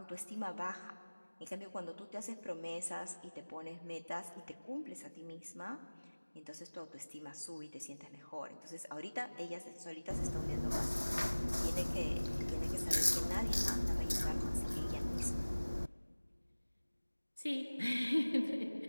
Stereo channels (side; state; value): both; inverted; correlation -1.00